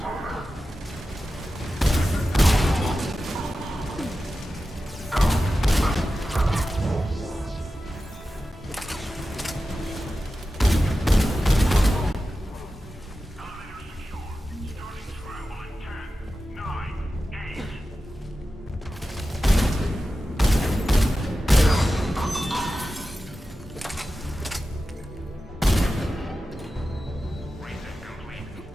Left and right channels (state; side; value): normal; both; correlation 0.93